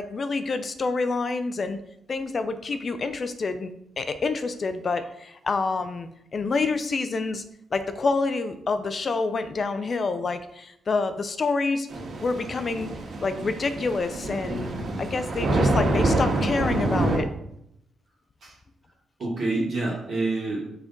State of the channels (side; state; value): both; normal; correlation 0.84